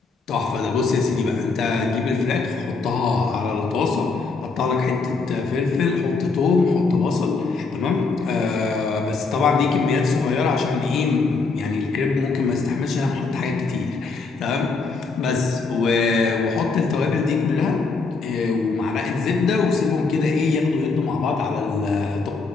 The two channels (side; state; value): right; quieter; 4.2 dB